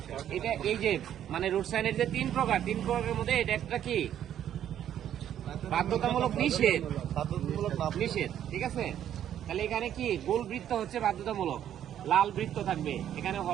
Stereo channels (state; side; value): quieter; left; 10.5 dB